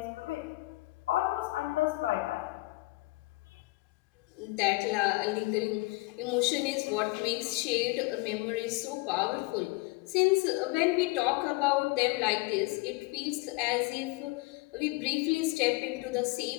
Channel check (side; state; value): right; quieter; 23.5 dB